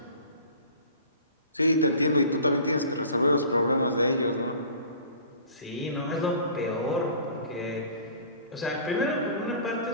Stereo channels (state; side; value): inverted; both; correlation -0.44